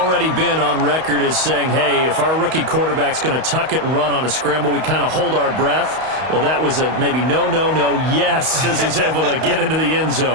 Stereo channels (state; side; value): late; left; 31 ms